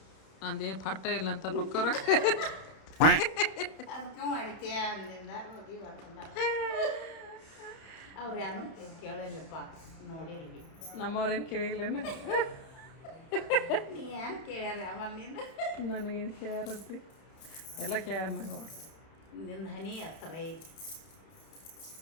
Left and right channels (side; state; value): right; late; 31 ms